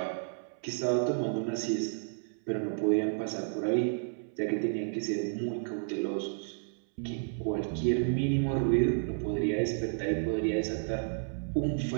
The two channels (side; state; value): left; silent; 57 dB below the other